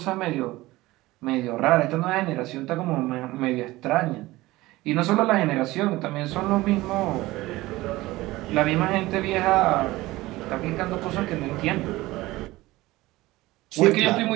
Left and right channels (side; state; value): left; quieter; 18.7 dB